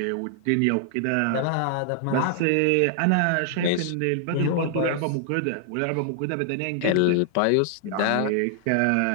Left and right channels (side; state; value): both; different; correlation 0.00